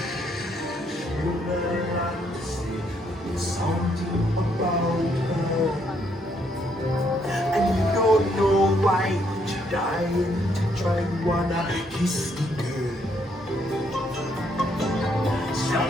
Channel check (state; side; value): normal; both; correlation 0.72